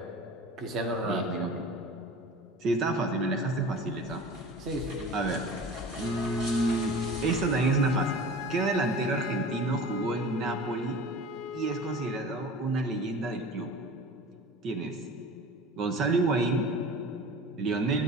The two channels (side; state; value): both; normal; correlation 0.38